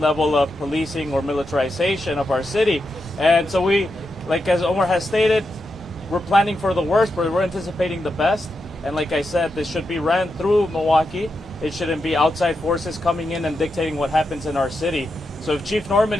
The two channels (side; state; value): right; noise; rumble, 22 dB below the sound